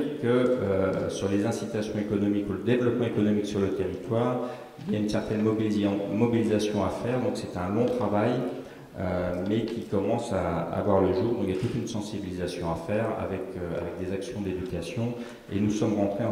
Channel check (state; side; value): identical; both; correlation 1.00